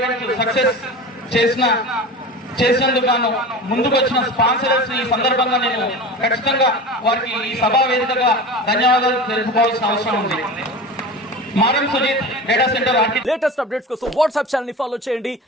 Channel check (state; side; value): normal; both; correlation 0.31